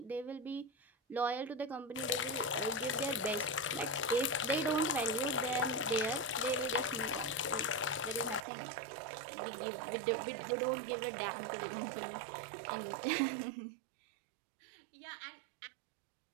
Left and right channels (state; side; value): drops out; left; at 8.5 s